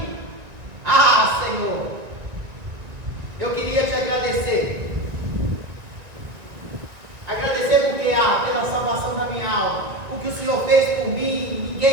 Ah, Senhor, eu queria te agradecer. Agradecer porque pela salvação da minha alma. O que o Senhor fez por mim,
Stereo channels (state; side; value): late; left; 1.9 ms